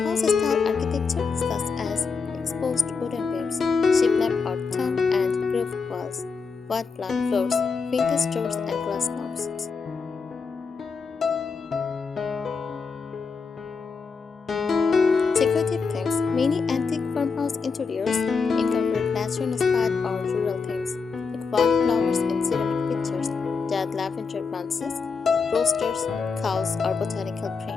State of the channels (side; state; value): right; quieter; 5.1 dB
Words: architecture such as exposed wooden beams, shiplap or tongue and grooved walls, white plank floors, vintage doors, and glass knobs. Decorative themes. Many antique farmhouse interiors incorporate nature-inspired or rural themes, like wildflowers in ceramic pictures, dead lavender bunches, roasters, cows, or botanical